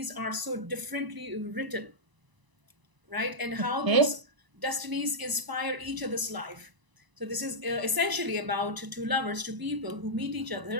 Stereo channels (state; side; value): late; left; 1.0 ms